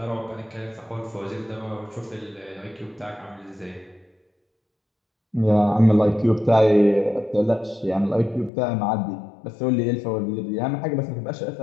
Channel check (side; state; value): right; drops out; at 8.5 s